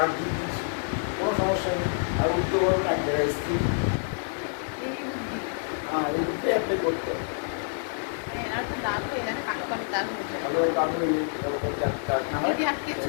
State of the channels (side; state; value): right; silent; 60 dB below the other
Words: দিয়ে দিচ্ছি, কোনো সমস্যা নেই। আর উঠতে পারবে না, এক জায়গায় স্থির। এই বুদ্ধি। হ্যাঁ, এই বুদ্ধি অ্যাপ্লাই করতে হবে। মানে এনার তো দাঁত হয়ে যায়, কালো কালো দাঁত হয়ে যায়। ভালো কারণ এই কাঠ না হয় যদি আটকেছো